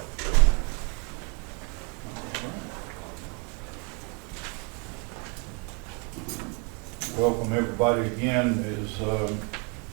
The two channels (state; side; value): quieter; left; 35.0 dB